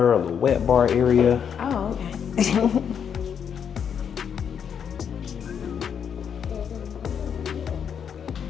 a little wet bar area. Oh, okay.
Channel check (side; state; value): right; quieter; 7.7 dB